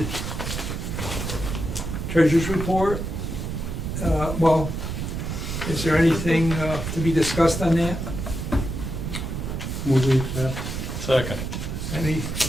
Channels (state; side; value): noise; right; rumble, 4 dB below the sound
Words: treasurer's report. Well, is there anything to be discussed on that? Will we accept? Second.